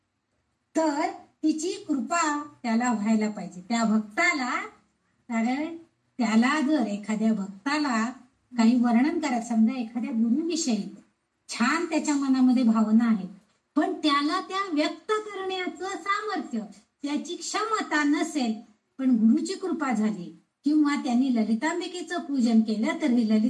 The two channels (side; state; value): both; identical; correlation 1.00